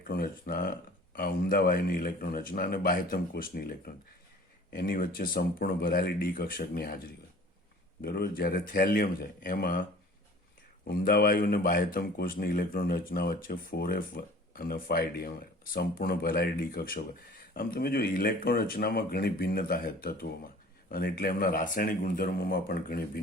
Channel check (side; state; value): both; normal; correlation 0.47